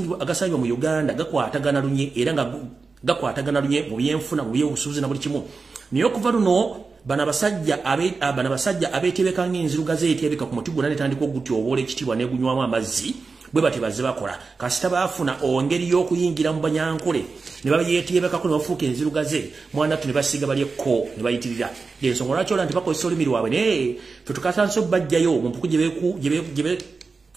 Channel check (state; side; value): quieter; left; 4.4 dB